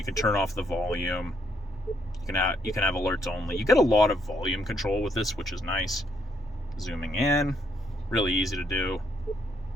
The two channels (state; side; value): normal; both; correlation 0.73